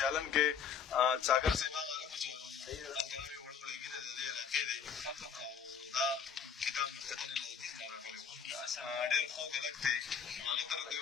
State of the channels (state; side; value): quieter; right; 7.0 dB